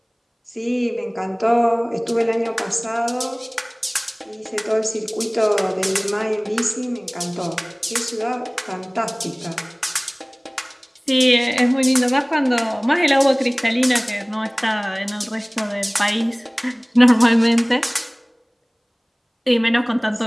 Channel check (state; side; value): identical; both; correlation 1.00